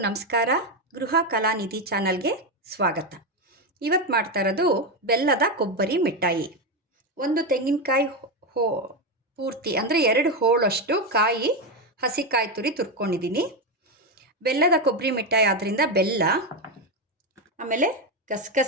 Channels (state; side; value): normal; both; correlation 0.10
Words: ನಮಸ್ಕಾರ. ಗೃಹ ಕಲಾನಿಧಿ ಚಾನಲ್ಗೆ ಸ್ವಾಗತ. ಇವತ್ತು ಮಾಡ್ತಾ ಇರೋದು ಬೆಲ್ಲದ ಕೊಬ್ಬರಿ ಮಿಠಾಯಿ. ಒಂದು ತೆಂಗಿನಕಾಯಿ ಪೂರ್ತಿ ಅಂದರೆ 2 ಹೋಳಷ್ಟು ಕಾಯಿ ಹಸಿಕಾಯಿ ತುರಿ ತುರ್ಕೊಂಡಿದ್ದೀನಿ. ಬೆಲ್ಲದ ಕೊಬ್ಬರಿ ಮಿಠಾಯಿ ಆದ್ದರಿಂದ ಬೆಲ್ಲ, ಆಮೇಲೆ